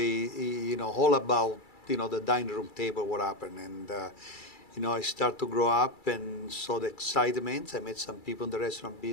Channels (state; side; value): late; right; 2.3 ms